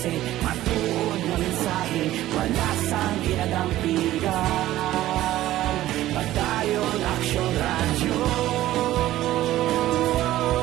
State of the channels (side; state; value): left; quieter; 14.7 dB